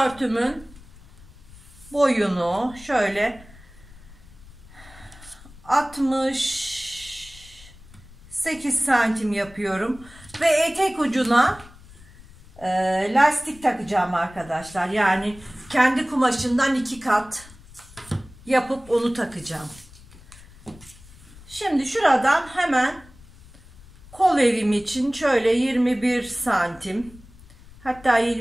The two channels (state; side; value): noise; left; rumble, 22 dB below the sound